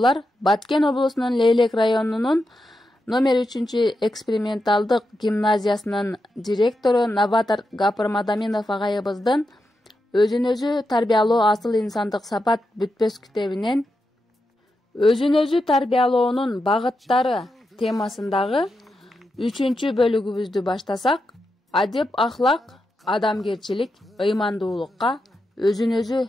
Баткен облусунун Лейлек районунун номер 3 эксперименталдык гимназиясынын директору Новатор Гапыр Мадаминов агайыбыздын өзүн-өзү тарбиялоо асыл инсандык сапат бүтпөс китебинен өзүн-өзү тарбиялоонун багыттары темасындагы 3 бөлүгүбүздү баштасак, адеп ахлак, адамгерчилик, ыймандуулукка өзүн-өзү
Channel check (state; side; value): normal; both; correlation 0.87